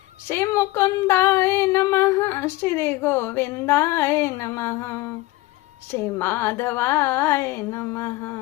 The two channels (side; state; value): right; quieter; 19.2 dB